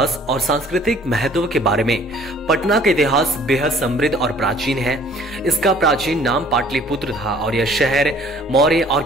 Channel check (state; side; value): normal; both; correlation 0.55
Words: और सांस्कृतिक महत्व के बारे में। पटना का इतिहास बेहद समृद्ध और प्राचीन है। इसका प्राचीन नाम पाटलिपुत्र था और यह शहर मौर्य और